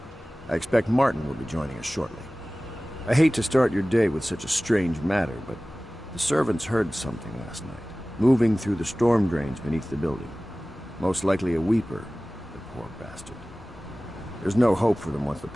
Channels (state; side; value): normal; both; correlation 0.98